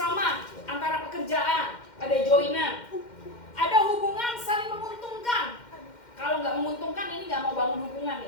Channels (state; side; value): late; right; 2.1 ms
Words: antara pekerjaan, ada joinan. Ada hubungan saling menguntungkan. Kalau nggak menguntungkan, ini nggak mau bangun hubungan